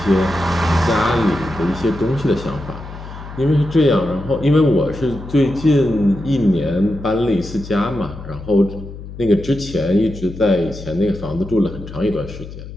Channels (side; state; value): left; noise; hum, 12 dB below the sound